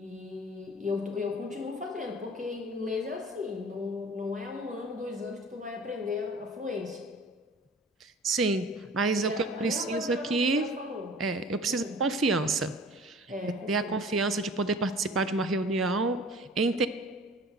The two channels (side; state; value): both; normal; correlation 0.44